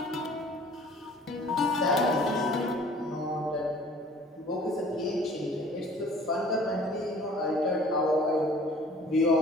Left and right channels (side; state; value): both; normal; correlation 0.51